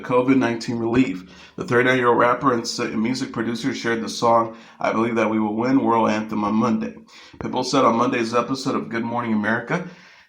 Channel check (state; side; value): identical; both; correlation 1.00